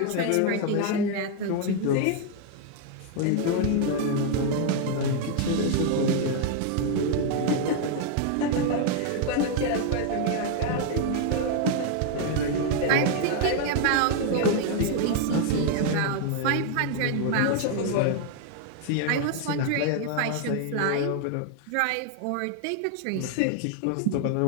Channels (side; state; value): both; different; correlation 0.00